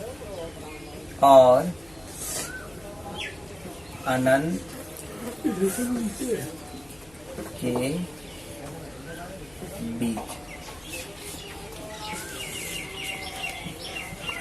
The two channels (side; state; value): left; noise; hum, 26 dB below the sound